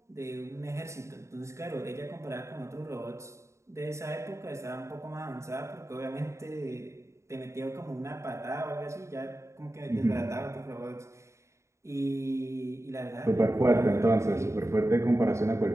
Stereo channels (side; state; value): left; late; 0.14 ms